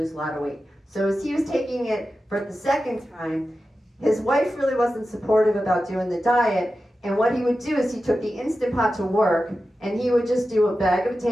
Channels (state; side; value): normal; both; correlation 0.92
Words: a lot of weight. So as he was taking it for the second time, his wife really wasn't supportive about doing the diet. And what he would do is he took the Instant Pot to work, and he would just do a bag of